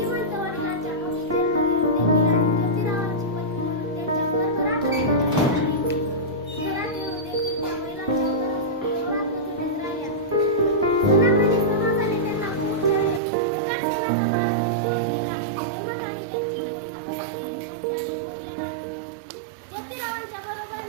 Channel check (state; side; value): drops out; left; at 13.2 s